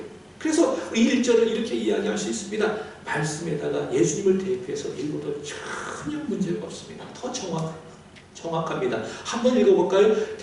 그래서 1절을 이렇게 이야기할 수 있습니다. 말씀에다가 예수님을 대입해서 읽어도 전혀 문제가 없습니다. 더 정확합니다. 한번 읽어볼까요?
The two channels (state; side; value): identical; both; correlation 1.00